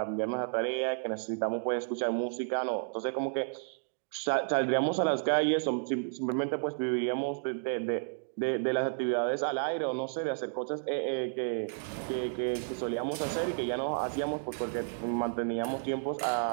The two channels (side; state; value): left; silent; digital silence